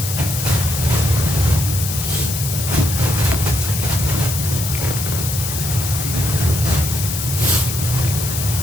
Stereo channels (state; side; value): noise; left; hiss, 5 dB below the sound